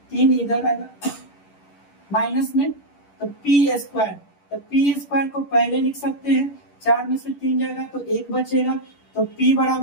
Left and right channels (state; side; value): late; right; 10 ms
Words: इधर आएगा माइनस में, तो p स्क्वायर, तो p स्क्वायर को पहले लिख सकते हैं, 4 में से 3 जाएगा तो 1 बचेगा, तो p